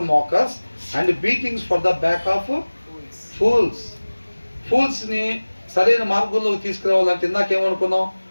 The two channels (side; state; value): both; inverted; correlation -1.00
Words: mockers and beatings for the back of ఫూల్స్ని సరైన మార్గంలోకి తీసుకురావాలంటే ఇందాకేమనుకున్నాం,